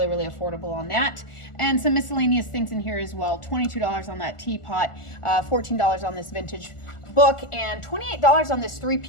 really affordable on that. And some miscellaneous things in here as well. $22 on that teapot, $14 on this vintage book, and $28 on this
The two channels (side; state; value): right; late; 1.4 ms